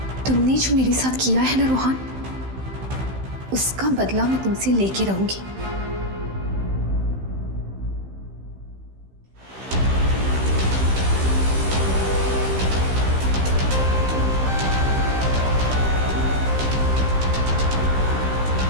तुमने जो मेरे साथ किया है ना रोहन, उसका बदला मैं तुमसे लेके रहूंगी।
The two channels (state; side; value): late; left; 15 ms